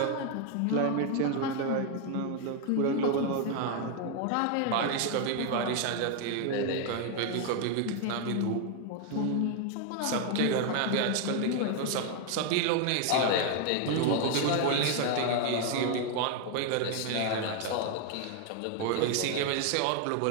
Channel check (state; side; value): different; both; correlation 0.01